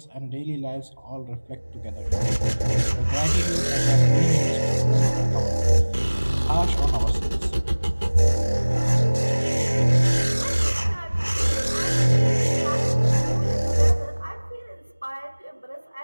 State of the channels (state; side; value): inverted; both; correlation -1.00